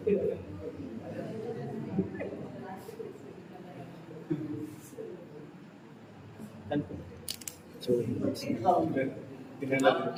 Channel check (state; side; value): identical; both; correlation 1.00